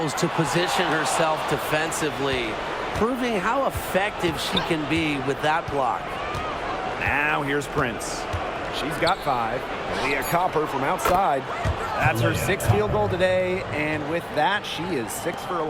to position herself defensively, proving how effective she can be with that block. Now here's Prince. She's got 5. Leah Copper from outside. That's her 6th field goal today, and with that, she is 6 for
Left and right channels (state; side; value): identical; both; correlation 1.00